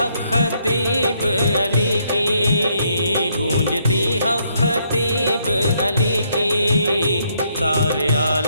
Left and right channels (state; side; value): inverted; both; correlation -0.72